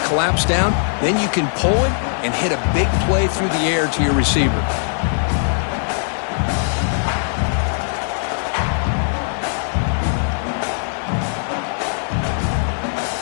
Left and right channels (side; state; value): right; silent; digital silence